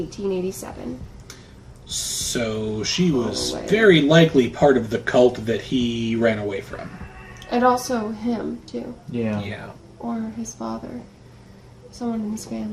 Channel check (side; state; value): both; identical; correlation 1.00